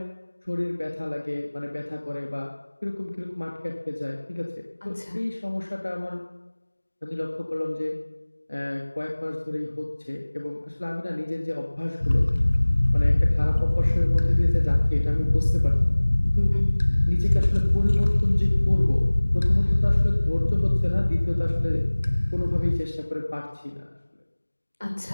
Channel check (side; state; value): both; inverted; correlation -1.00